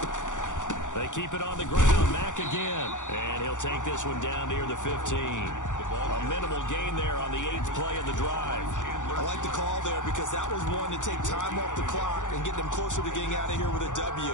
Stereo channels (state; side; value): late; right; 0.86 ms